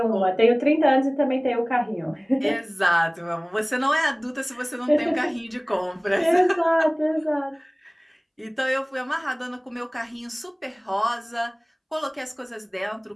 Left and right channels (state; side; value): identical; both; correlation 1.00